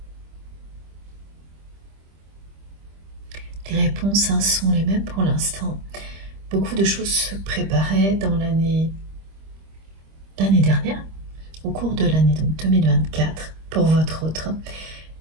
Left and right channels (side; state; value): left; late; 25 ms